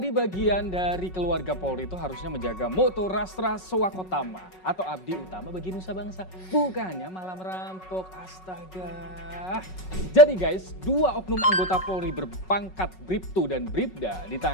bagian dari keluarga Polri itu harusnya menjaga moto Rastra Swakotama atau abdi utama bagi nusa bangsa. Bukannya malah merampok, astaga. Jadi guys, 2 oknum anggota Polri berpangkat Bribtu dan Bribda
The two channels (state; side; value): late; right; 5.4 ms